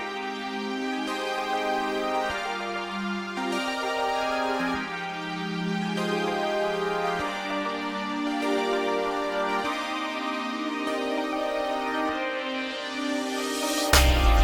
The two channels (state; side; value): identical; both; correlation 1.00